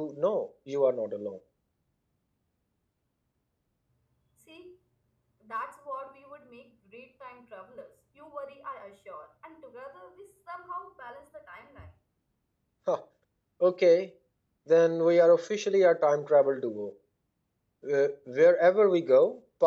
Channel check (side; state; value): both; identical; correlation 1.00